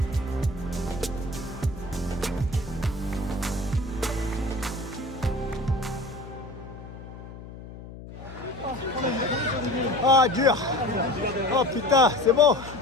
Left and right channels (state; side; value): noise; left; hum, 14 dB below the sound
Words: Ah, dur. Oh putain, c'est bon.